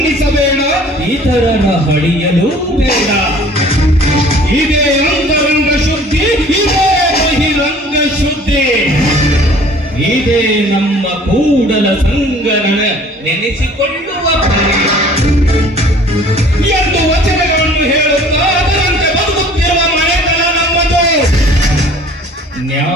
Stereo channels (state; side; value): normal; both; correlation 0.51